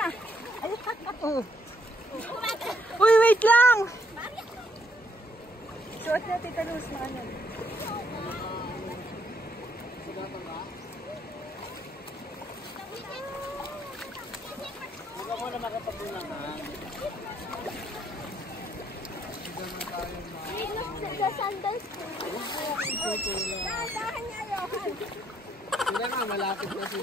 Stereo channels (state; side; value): normal; both; correlation 0.71